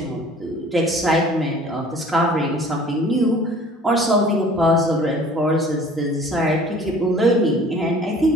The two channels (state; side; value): normal; both; correlation 0.49